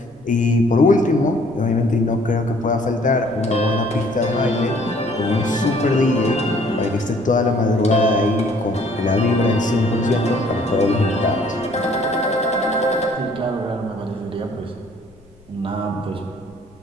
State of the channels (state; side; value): noise; left; rumble, 28 dB below the sound